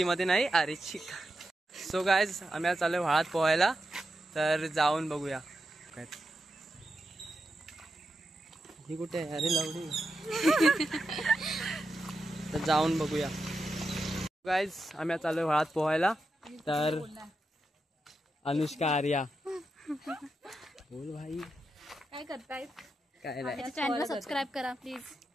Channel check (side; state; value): both; normal; correlation 0.88